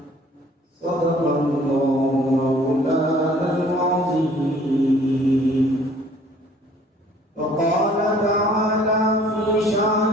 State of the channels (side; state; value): both; normal; correlation 0.55